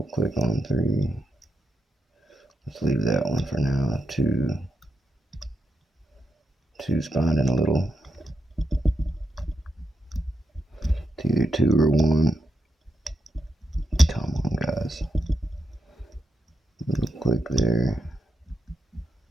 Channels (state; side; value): normal; both; correlation 0.84